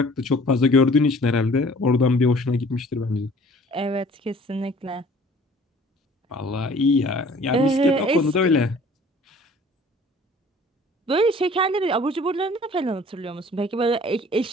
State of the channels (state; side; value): normal; both; correlation 0.52